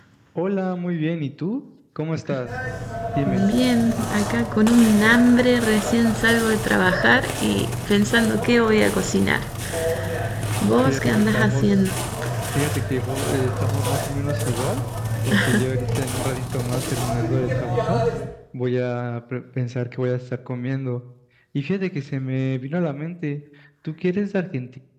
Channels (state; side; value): identical; both; correlation 1.00